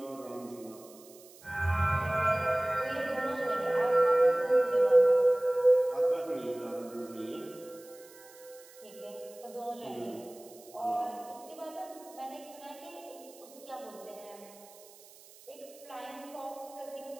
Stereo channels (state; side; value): noise; right; hiss, 22 dB below the sound